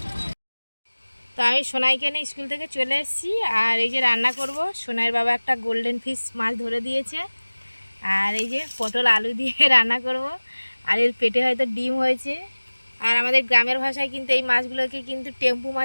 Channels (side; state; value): both; inverted; correlation -1.00